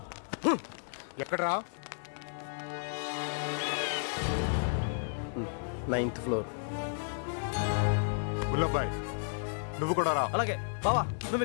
ఎక్కడరా? 9th floor. ముల్లబ్బాయ్ నువ్వు కూడా రా. అలాగే బావా, నువ్వు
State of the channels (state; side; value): silent; right; 56 dB below the other